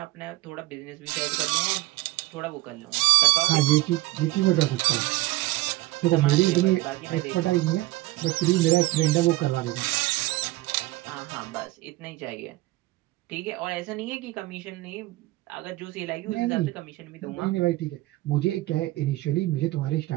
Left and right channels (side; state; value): left; quieter; 18.5 dB